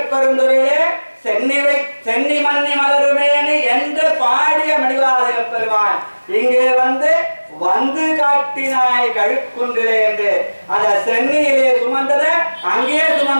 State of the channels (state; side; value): inverted; both; correlation -1.00